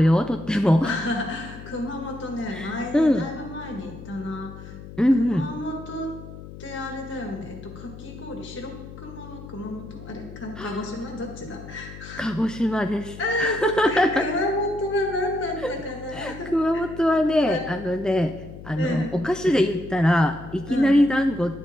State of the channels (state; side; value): noise; left; hum, 14 dB below the sound